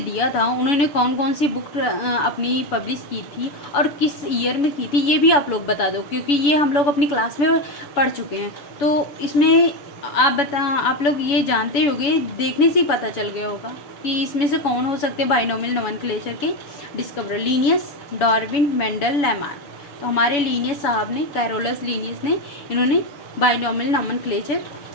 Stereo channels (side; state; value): right; late; 7.0 ms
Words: था उन्होंने कौन कौन सी बुक अपनी पब्लिश की थी और किस ईयर में की थी, ये भी आप लोग बता दो, क्योंकि ये हम लोग अपनी क्लास में पढ़ चुके हैं। तो इसमें आप लोग ये जानते होंगे, देखने से ही पता चल गया होगा कि इसमें से कौन हो सकते हैं बाइनोमियल नोमेनक्लेचर के discoverer. Linnaeus, Darwin, Mendel, Lamarck. तो हमारे लीनियस साहब ने, कैरोलस लीनियस ने, इन्होंने बाइनोमियल नोमेनक्लेचर